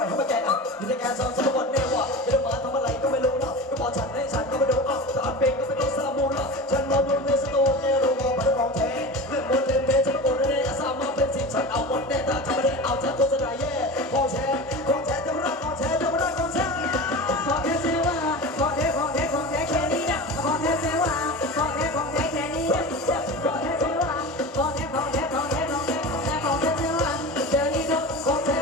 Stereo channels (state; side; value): normal; both; correlation 0.30